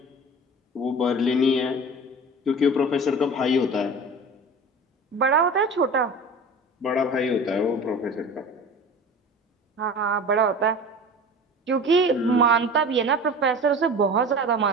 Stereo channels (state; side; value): normal; both; correlation 0.36